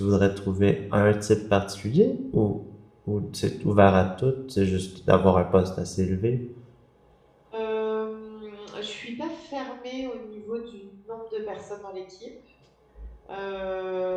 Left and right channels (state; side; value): identical; both; correlation 1.00